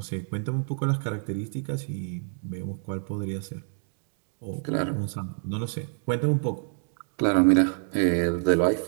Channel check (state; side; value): silent; left; 60 dB below the other